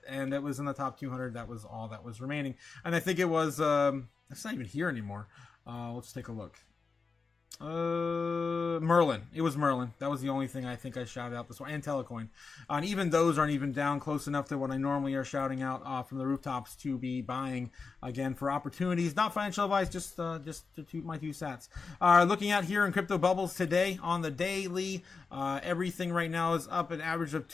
And it was in the top 200. That was all that was remaining. And I think it was, it's not even here anymore. Let's take a look. Merlin. It was Merlin. That was the only thing I think I shouted out this one. And ALTCOIN. And even those aren't even down close enough to what I normally are shouting out from the rooftops to be buying again for opportunities. Not financial advice, just to toot my 2 cents. Looking at here in crypto bubbles today on the daily, everything right now is up an average of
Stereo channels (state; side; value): quieter; right; 4.7 dB